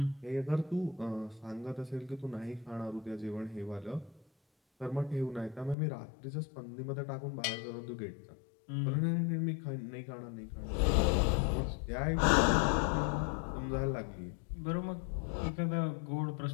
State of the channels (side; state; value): right; drops out; at 5.8 s